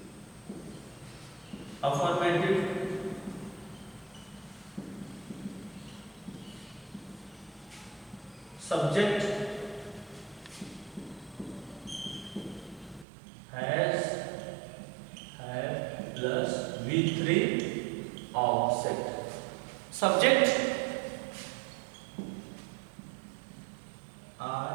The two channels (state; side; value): drops out; left; at 13.1 s